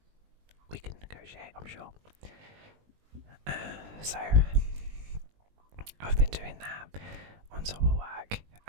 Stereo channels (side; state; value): left; late; 20 ms